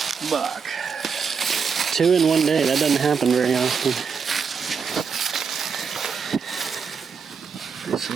buck. 2 in one day. That doesn't happen very often. It's an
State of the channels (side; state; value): left; quieter; 6.0 dB